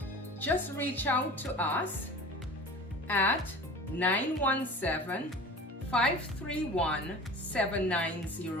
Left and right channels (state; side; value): normal; both; correlation 0.39